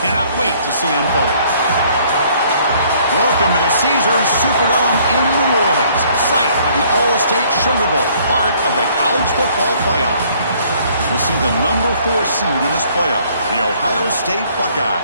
cannot wait to see unfold. Welcome to the Caesars Superdome in New Orleans, site of the All-State Sugar Bowl, part of the college football playoff. We'll see the number 4 seed in this playoff, the Ohio State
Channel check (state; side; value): inverted; both; correlation -0.61